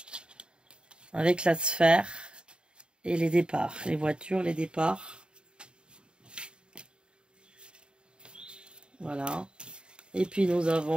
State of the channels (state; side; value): late; left; 0.051 ms